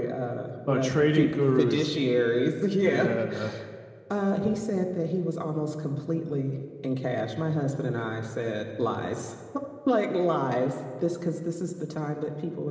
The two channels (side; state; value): both; identical; correlation 1.00